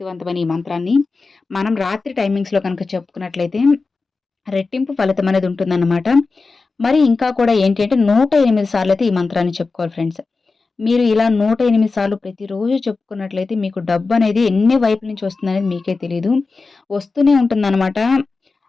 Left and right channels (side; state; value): right; quieter; 4.0 dB